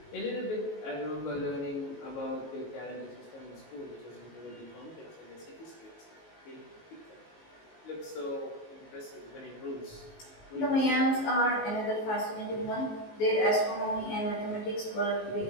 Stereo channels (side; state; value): right; late; 19 ms